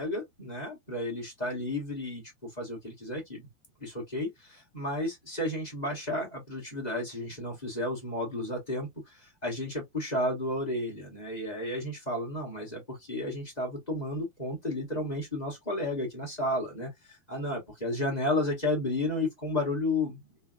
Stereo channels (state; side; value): late; right; 2.0 ms